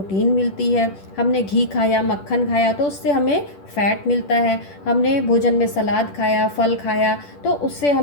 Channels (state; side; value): late; right; 10 ms